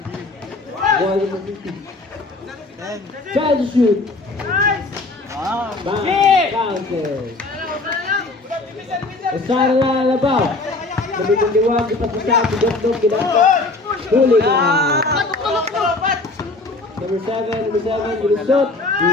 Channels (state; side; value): quieter; right; 3.2 dB